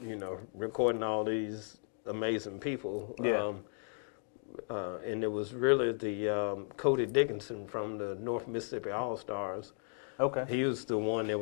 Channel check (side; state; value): right; silent; 54 dB below the other